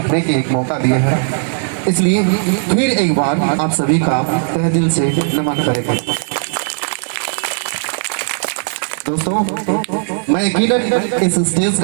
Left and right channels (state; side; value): silent; left; 69 dB below the other